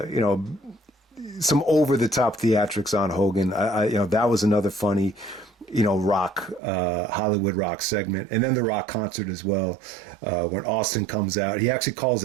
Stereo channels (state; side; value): drops out; left; at 6.6 s